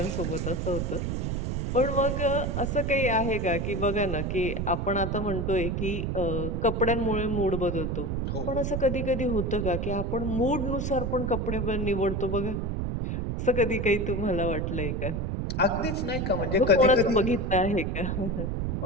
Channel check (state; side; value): noise; right; rumble, 1 dB below the sound